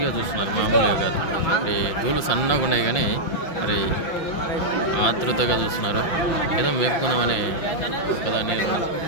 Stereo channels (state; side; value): late; right; 5.7 ms